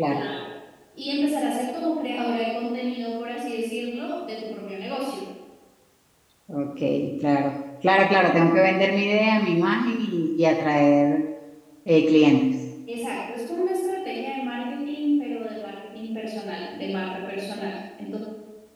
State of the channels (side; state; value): both; identical; correlation 1.00